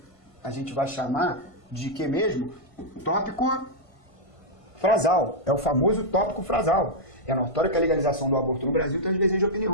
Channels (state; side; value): late; right; 1.5 ms